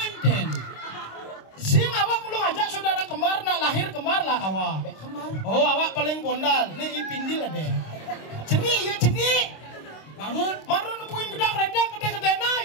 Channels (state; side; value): late; right; 26 ms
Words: Sing awak mulu ngajak saudara kembar nak lahir kembar lah awak. Kembar. Oh awak paling bondal. Nih ipindil deh. Ceni. Bangun. Maru nemuin gedang renteng gede-gede na